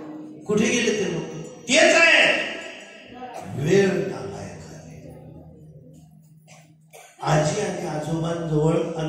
कुठे गेले ते लोक? तेच आहे वेळ नालायक आहे. आजी आणि आजोबांजवळ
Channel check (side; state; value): both; identical; correlation 1.00